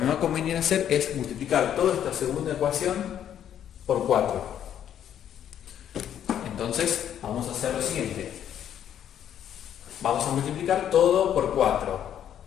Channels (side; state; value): right; quieter; 10.0 dB